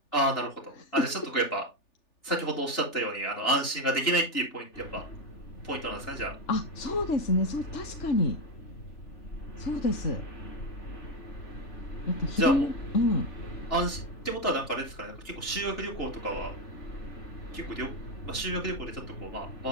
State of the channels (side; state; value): right; late; 3.4 ms